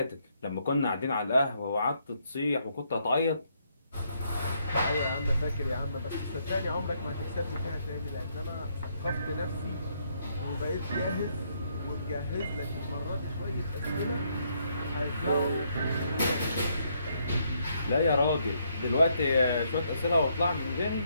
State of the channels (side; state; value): both; inverted; correlation -0.73